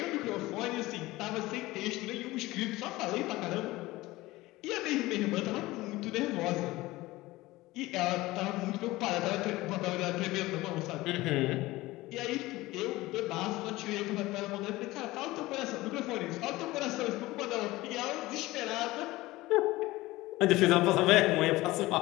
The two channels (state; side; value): quieter; right; 19.1 dB